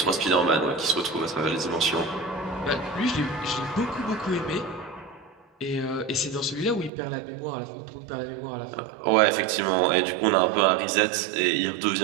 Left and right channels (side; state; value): left; drops out; at 6.9 s